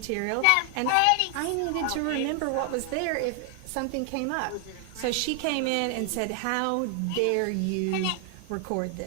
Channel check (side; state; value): both; different; correlation 0.00